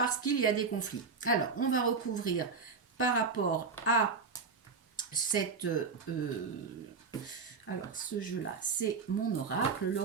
qu'il y a des conflits. Alors, on va recouvrir par rapport à cette... alors, ce jeu-là, c'est mon oracle,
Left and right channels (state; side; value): quieter; left; 5.0 dB